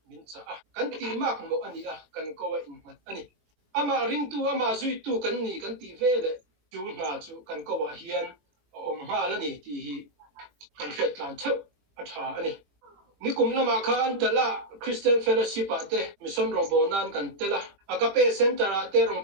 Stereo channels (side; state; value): left; late; 20 ms